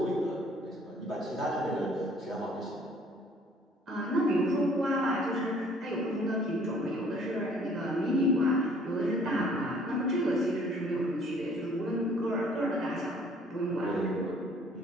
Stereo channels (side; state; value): both; normal; correlation 0.58